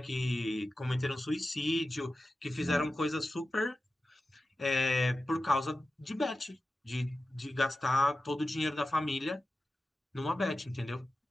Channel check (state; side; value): normal; both; correlation 0.93